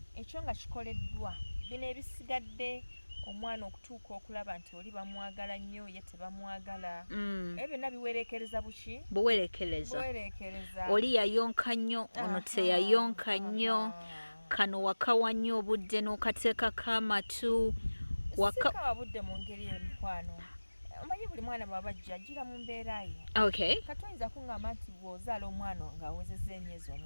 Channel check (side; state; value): both; inverted; correlation -1.00